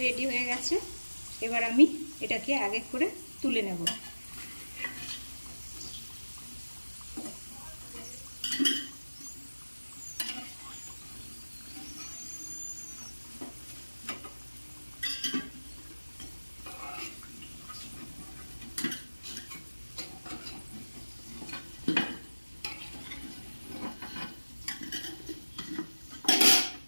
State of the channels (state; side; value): inverted; both; correlation -1.00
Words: রেডি হয়ে গেছে। এবার আমি এটাকে এক এক করে তুলে নেব।